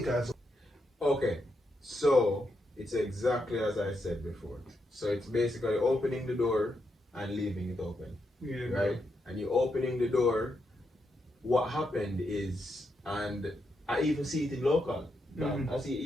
as well. Okay, so it's exactly as I said before. So it's basically opening the door and leaving it open. Yeah, right? And you opening the door. What happened is, and I even see it in local.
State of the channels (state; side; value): normal; both; correlation 0.82